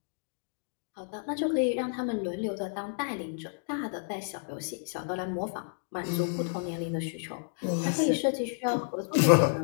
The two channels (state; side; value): silent; right; digital silence